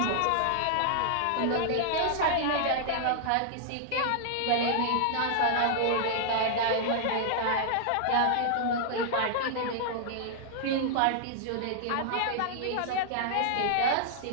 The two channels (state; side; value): different; both; correlation -0.01